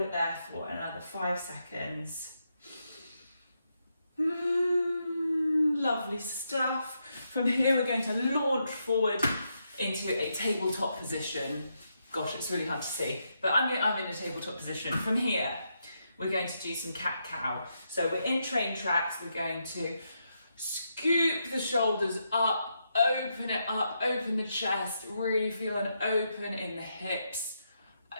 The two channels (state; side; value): inverted; both; correlation -0.82